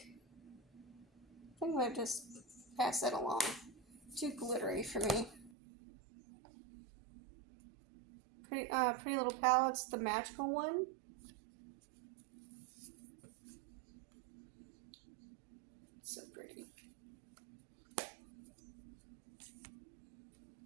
think I'm gonna just pass that along. Too glittery for me. Pretty Little Palettes, the magical one. So pretty.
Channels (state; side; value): drops out; left; at 5.5 s